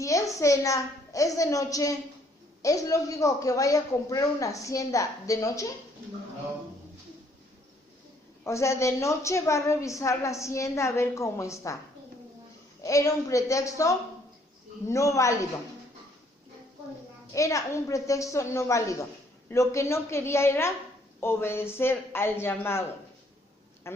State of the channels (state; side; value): normal; both; correlation 0.65